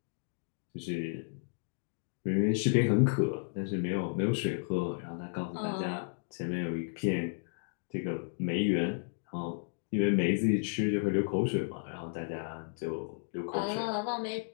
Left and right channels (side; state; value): right; silent; digital silence